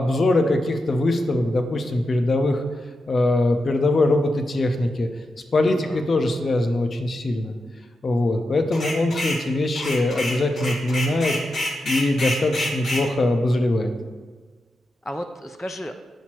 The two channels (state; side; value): normal; both; correlation 0.88